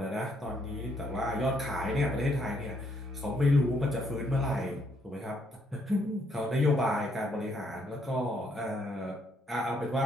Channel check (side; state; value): both; normal; correlation 0.71